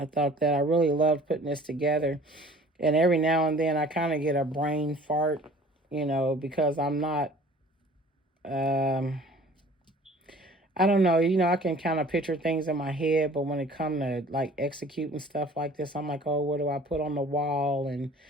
thought that I really loved putting this together. And every now and then I kind of get a brain fart, because I'm not, I don't know, I can kind of picture things in my head, but when it comes to like executing stuff like this, I'm like, oh, what do I put on the wall and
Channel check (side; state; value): both; normal; correlation 0.49